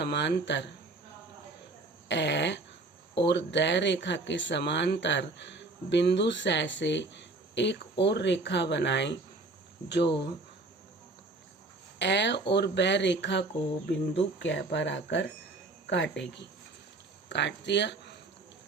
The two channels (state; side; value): quieter; left; 3.2 dB